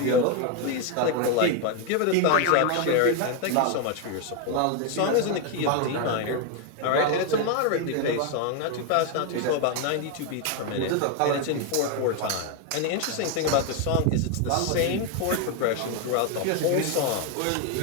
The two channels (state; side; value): different; both; correlation 0.01